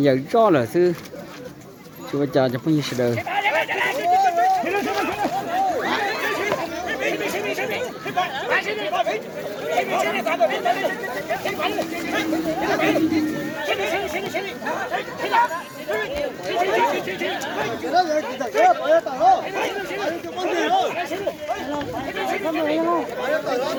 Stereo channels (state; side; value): identical; both; correlation 1.00